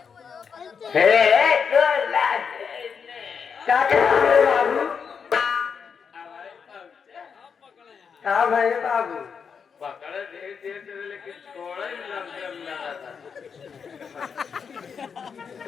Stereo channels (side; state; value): right; quieter; 6.4 dB